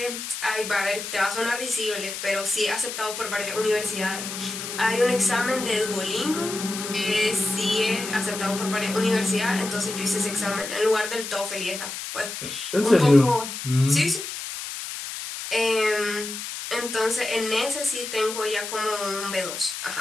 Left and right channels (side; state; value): left; noise; hiss, 7 dB below the sound